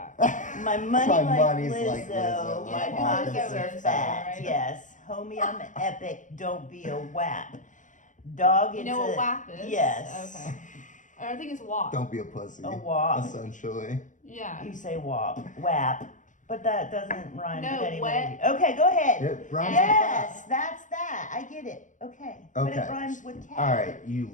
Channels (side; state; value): right; late; 0.37 ms